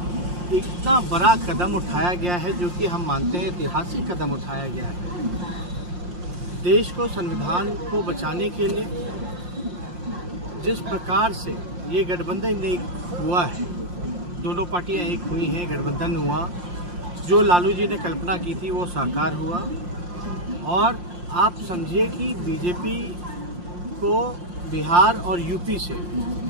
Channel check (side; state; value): left; late; 5.6 ms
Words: इतना बड़ा कदम उठाया गया है जो कि हम मानते हैं ऐतिहासिक कदम उठाया गया है। देश को, संविधान को बचाने के लिए जिस प्रकार से ये गठबंधन एक हुआ है, दोनों पार्टियां एक हुई हैं, गठबंधन हुआ, जो लालू जी ने कल्पना की थी वो साकार हुआ। और आप समझिए कि बीजेपी को बिहार और यूपी से